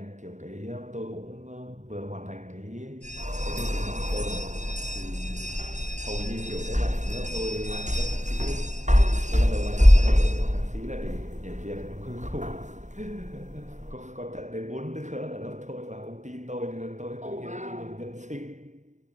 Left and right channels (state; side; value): late; left; 0.35 ms